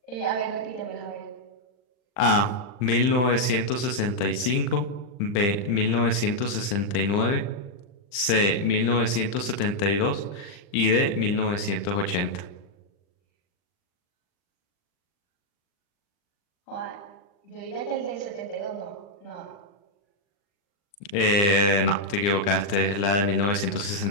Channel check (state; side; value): late; right; 39 ms